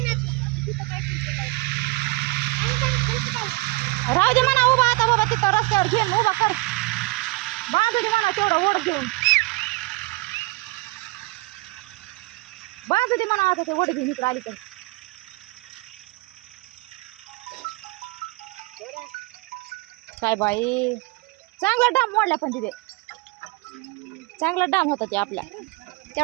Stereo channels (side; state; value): left; quieter; 23.8 dB